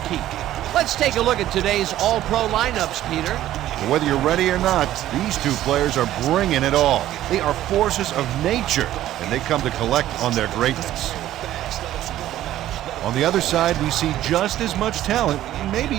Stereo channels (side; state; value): left; quieter; 13.4 dB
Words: Let's take a look at today's all-pro lineups, Peter. Whether you're ready or not, these two players are bringing it all. They are forces of nature, and they come to collect on their greatness. On the other side, we see just as much talent, maybe